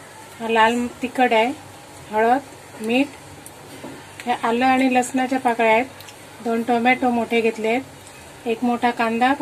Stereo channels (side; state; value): both; identical; correlation 1.00